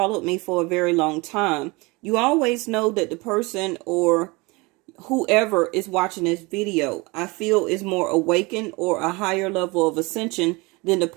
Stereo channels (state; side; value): quieter; left; 25.3 dB